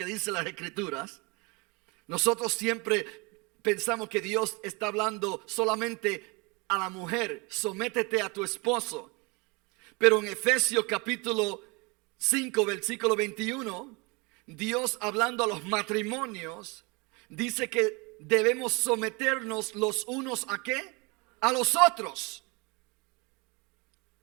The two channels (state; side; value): quieter; left; 28.4 dB